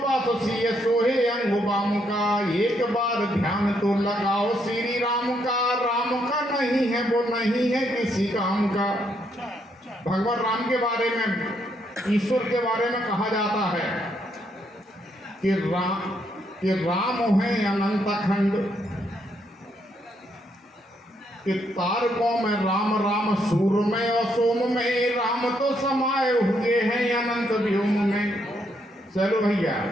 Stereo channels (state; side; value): normal; both; correlation 0.75